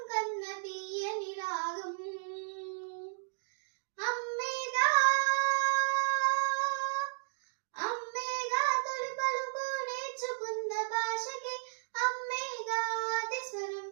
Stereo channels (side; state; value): left; silent; digital silence